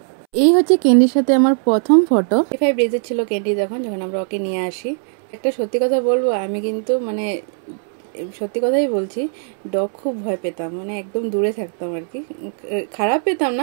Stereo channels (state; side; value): silent; left; 66 dB below the other